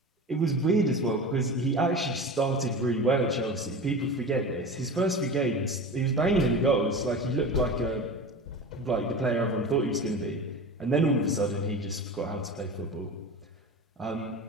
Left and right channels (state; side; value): normal; both; correlation 0.31